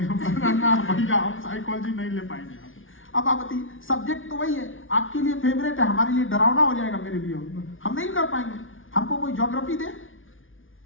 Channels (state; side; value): late; right; 0.58 ms